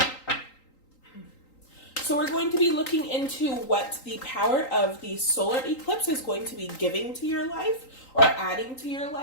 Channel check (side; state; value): right; late; 3.8 ms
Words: So we're going to be looking into what the power of the solar eclipse is going to be giving to your life or adding to your